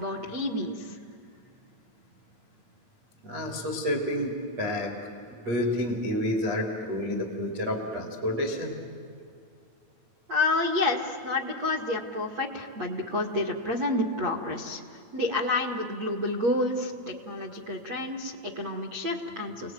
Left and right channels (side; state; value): left; late; 8.4 ms